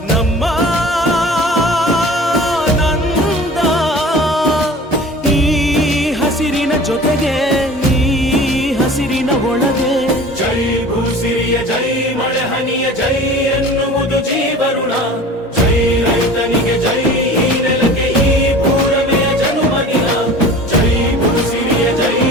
ನಮ್ಮ ನಂದ ಈ ಹಸಿರಿನ ಜೊತೆಗೆ ಈ ಹಸಿರಿನ ಒಳಗೆ ಜೈ ಭೂಸಿರಿಯ ಜೈ ಮಳೆ ಹನಿಯ ಜೈ ಎನ್ನುವುದು ಜೀವರುಣ ಜೈ ರೈತನಿಗೆ ಜೈ ಈ ನೆಲಕ್ಕೆ ಈ ಪೂರಮೆಯ ಜನುಮದಿನ ಜೈ ಭೂಸಿರಿಯ ಜೈ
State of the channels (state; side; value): normal; both; correlation 0.41